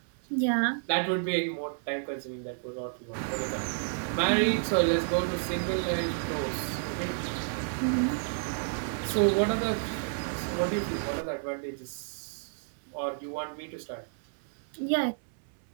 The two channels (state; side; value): silent; left; 57 dB below the other